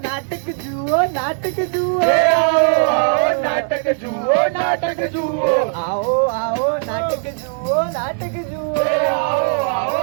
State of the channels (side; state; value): left; silent; 63 dB below the other